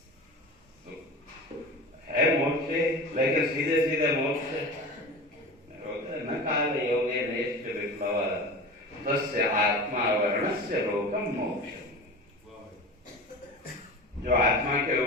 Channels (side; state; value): both; normal; correlation 0.32